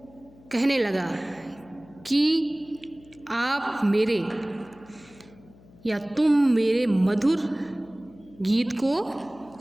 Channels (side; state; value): left; noise; hum, 25 dB below the sound